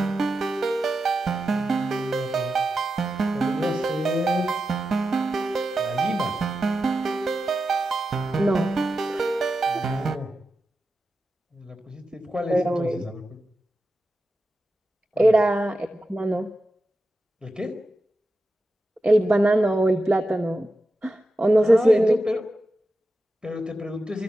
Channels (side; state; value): both; normal; correlation 0.91